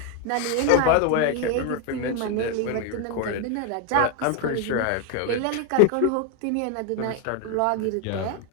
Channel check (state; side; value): different; both; correlation 0.01